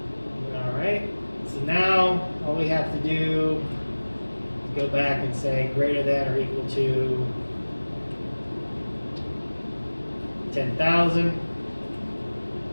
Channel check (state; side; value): inverted; both; correlation -1.00